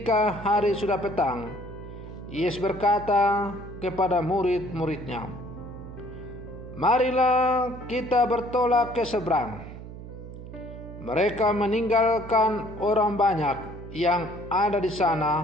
hari sudah petang, Yesus berkata kepada murid-muridnya, "Marilah kita bertolak ke seberang." Mereka meninggalkan orang banyak yang ada di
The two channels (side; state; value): right; noise; hum, 13 dB below the sound